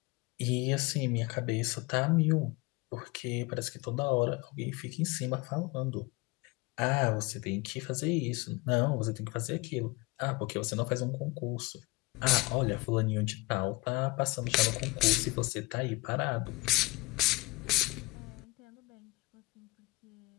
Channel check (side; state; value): right; quieter; 23.4 dB